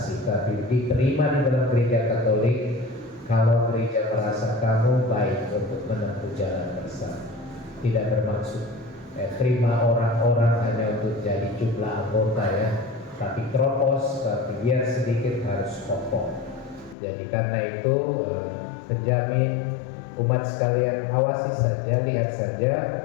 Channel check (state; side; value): drops out; right; at 16.9 s